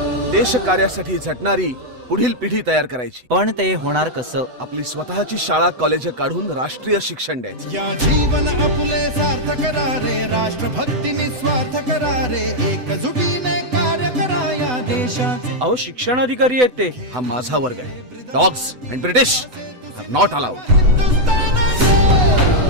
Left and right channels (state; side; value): late; left; 8.0 ms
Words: देश कार्यासाठी झटणारी पुढील पिढी तयार करायची, पण ते होणार कसं? आपली स्वतःची शाळा कॉलेज काढून राष्ट्रीय शिक्षण द्यायचं। या जीवन आपुले सार्थ करा रे, राष्ट्रभक्ती निस्वार्थ करा रे, एकजुटीने कार्य करा या देशाचे। अहो शिक्षण अधिकारी आहेत ते। हा माझा वर्ग आहे। Dogs and British are not allowed.